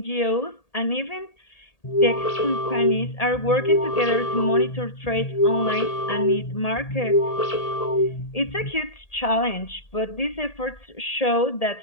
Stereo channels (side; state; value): right; late; 1.8 ms